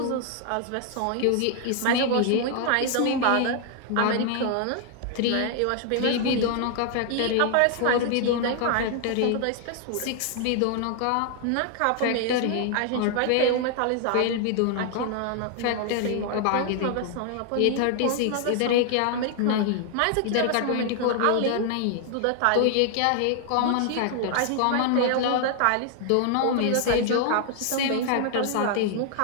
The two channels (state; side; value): different; both; correlation 0.00